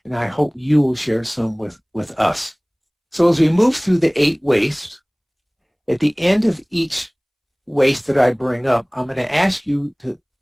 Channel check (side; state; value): both; identical; correlation 1.00